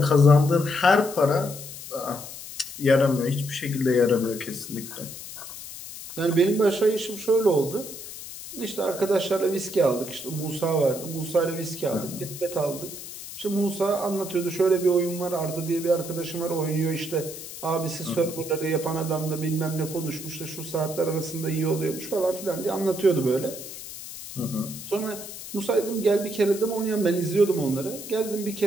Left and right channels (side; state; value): left; noise; hiss, 12 dB below the sound